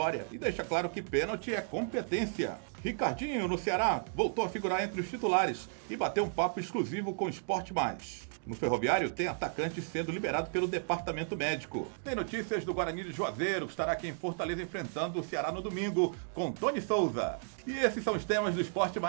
e deixa claro que pênalti é competência. Ricardinho, no Ceará, voltou a figurar entre os titulares e bateu um papo exclusivo com o Esporte Mais. No Ferroviário, tem atacante sendo liberado pelo departamento médico. Tem notícias do Guarani de Juazeiro, que estará aqui em Fortaleza enfrentando o Ceará no domingo, com Tony Souza. E esses são os temas do Esporte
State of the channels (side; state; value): left; silent; digital silence